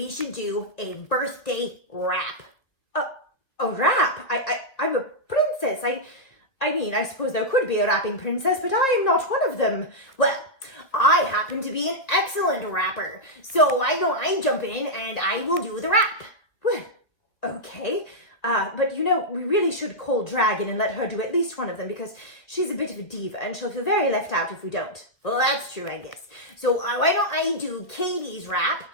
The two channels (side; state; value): right; late; 1.9 ms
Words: should do a birthday rap. A rap? I'm a princess. I mean, I suppose there could be a rapping princess, but I am not one of them. Well, I happen to be an excellent rapper. So why don't I jump in and I will do the rap? Well, okay. But you know, we really should call Dragon and let her do at least one of them because she's a bit of a diva and she'll feel very left out if we don't. Well, that's true, I guess. So why don't I do Katie's rap